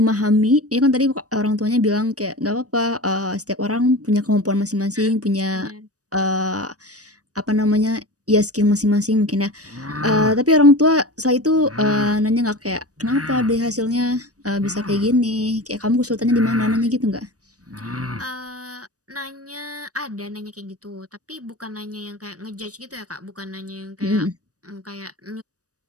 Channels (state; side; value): late; left; 0.66 ms